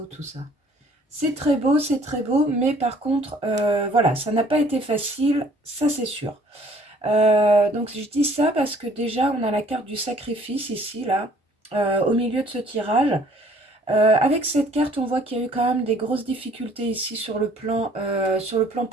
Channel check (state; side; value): normal; both; correlation 0.57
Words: tout ça. C'est très beau, mais par contre, voilà, ça n'a pas été facile, ça c'est sûr. Donc je dis ça parce que déjà, on a la carte du sacrifice ici, là, au milieu de ce tirage. Avec cette carte, on voit qu'il y a eu quand même des grosses difficultés ici sur le plan